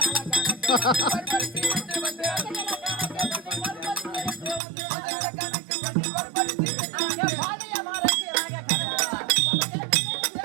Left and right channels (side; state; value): left; drops out; at 4.6 s